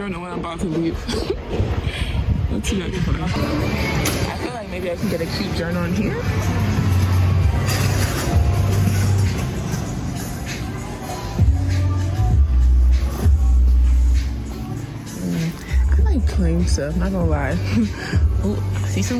when I'm about to leave. Let's see what I can put on. I feel like maybe I can get a cute journal in here. I like plain stuff, not gonna lie. Oh, I see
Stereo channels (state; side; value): identical; both; correlation 1.00